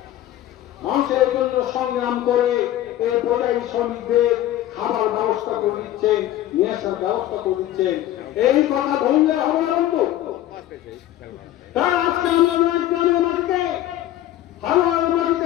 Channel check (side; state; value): right; quieter; 13.4 dB